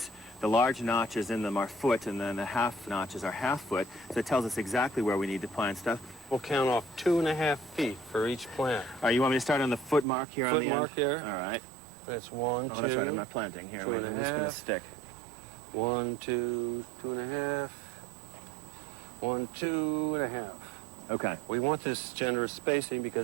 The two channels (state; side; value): drops out; left; at 10.1 s